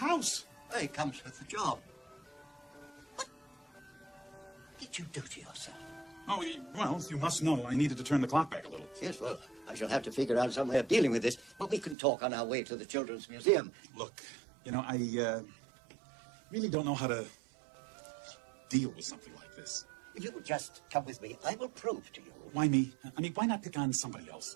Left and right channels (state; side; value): drops out; left; at 12.0 s